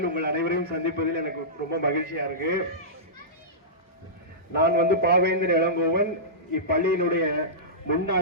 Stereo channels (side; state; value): both; normal; correlation -0.17